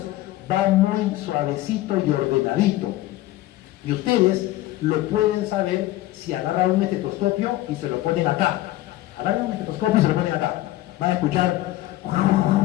va muy suavecito y ordenadito. Y ustedes lo pueden saber si agarran un estetoscopio y se lo ponen acá. Agarran un estetoscopio y se lo ponen acá. Van a escuchar.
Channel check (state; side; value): quieter; right; 16.0 dB